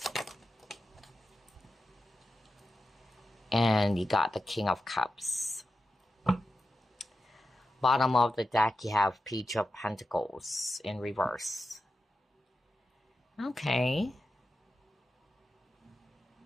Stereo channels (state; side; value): normal; both; correlation 0.91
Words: And you got the King of Cups. Bottom of the deck, you have Page of Pentacles in reverse. Okay.